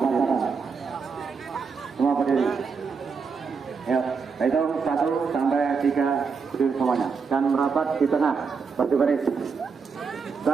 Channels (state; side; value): quieter; left; 5.4 dB